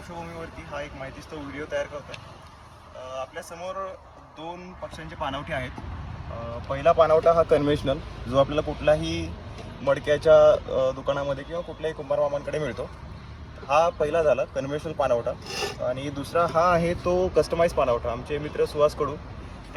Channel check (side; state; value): both; identical; correlation 1.00